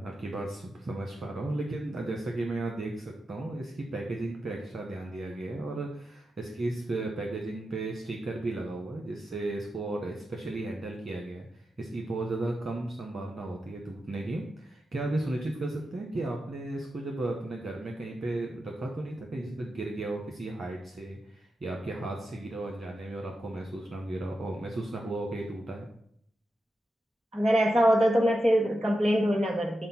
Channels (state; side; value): normal; both; correlation 0.89